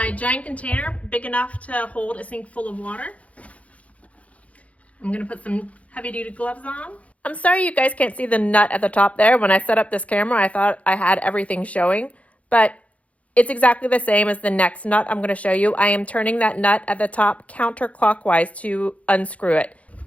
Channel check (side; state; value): right; late; 0.066 ms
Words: giant container, big enough to hold a sink full of water. I'm going to put some heavy-duty gloves on. I'm sorry you guys can't see the nut at the top there. When I set up this camera, I thought I had everything showing, but it's exactly the same as the next nut I'm going to show you. I am turning that nut at the top counterclockwise to unscrew it.